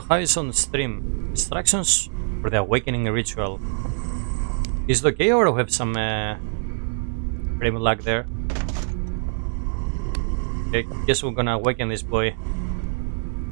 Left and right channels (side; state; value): left; silent; digital silence